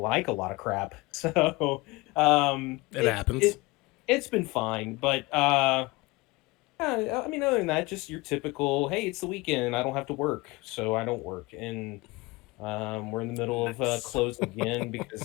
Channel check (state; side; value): quieter; right; 22.9 dB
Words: a lot of crap. So, It happens. it's been fine. But yeah, I mean, other than that, just your typical, hey, it's the weekend. I don't have to work, so I don't work. And we're in the middle of Nice. close again because